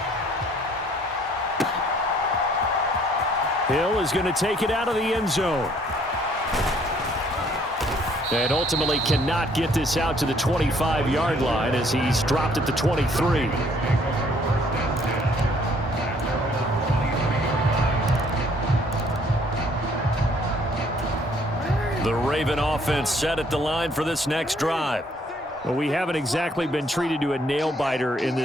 Hill is going to take it out of the end zone. And ultimately cannot get this out to the 25-yard line as he's dropped at the 23. The Raven offense set at the line for this next drive. Well, we haven't exactly been treated to a nail-biter in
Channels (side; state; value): both; normal; correlation 0.62